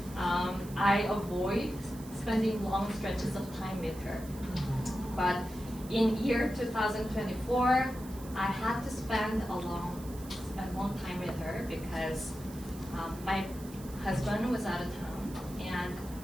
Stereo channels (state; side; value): noise; right; hiss, 18 dB below the sound